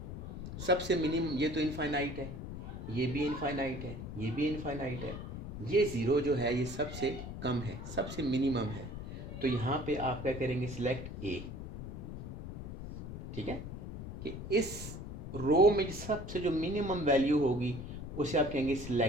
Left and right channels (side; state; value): left; noise; rumble, 8 dB below the sound